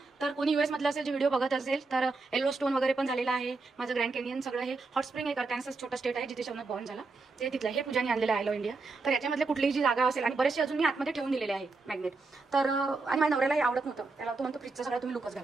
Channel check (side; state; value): left; quieter; 3.8 dB